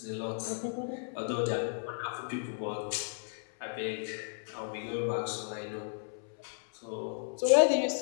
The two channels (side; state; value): right; silent; 55 dB below the other